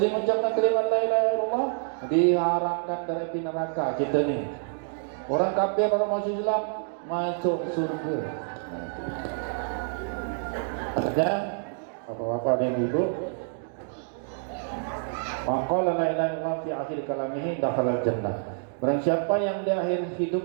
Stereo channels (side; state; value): left; silent; digital silence